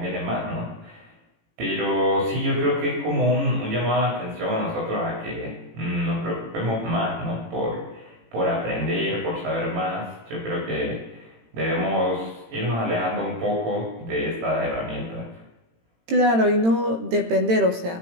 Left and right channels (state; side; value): late; left; 18 ms